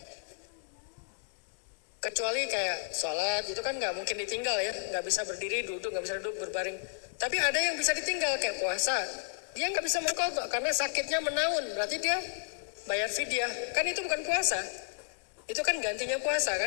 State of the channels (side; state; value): right; silent; digital silence